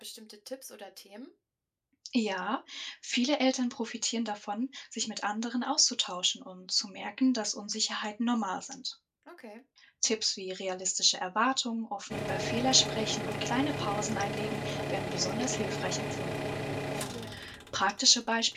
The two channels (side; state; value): both; identical; correlation 1.00